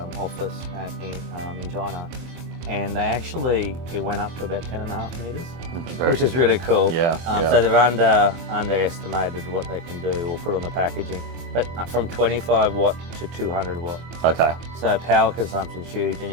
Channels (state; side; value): late; left; 23 ms